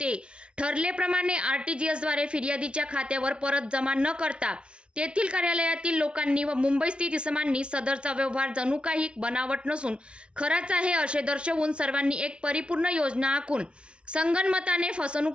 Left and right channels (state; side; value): late; left; 0.058 ms